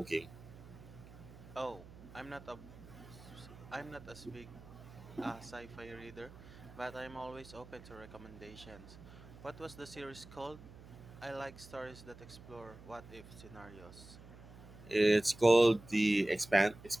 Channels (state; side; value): noise; right; hum, 17 dB below the sound